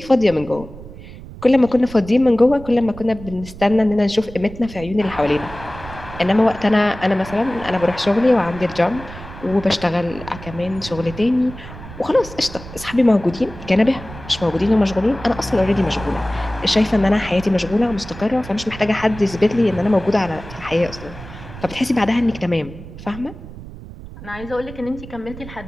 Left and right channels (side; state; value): right; noise; rumble, 14 dB below the sound